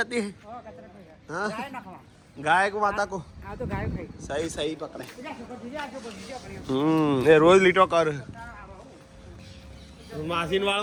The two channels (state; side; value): identical; both; correlation 1.00